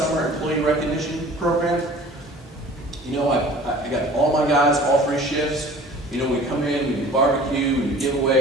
employee recognition program. I got all my guys, all 3 shifts. We come in, we do barbecue, we do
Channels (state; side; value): normal; both; correlation 0.46